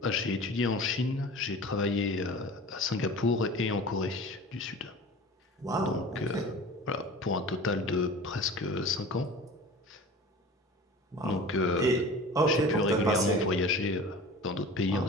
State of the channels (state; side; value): normal; both; correlation 0.38